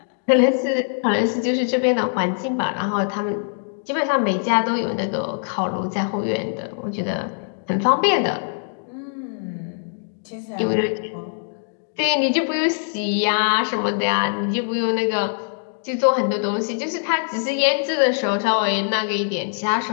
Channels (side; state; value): right; silent; digital silence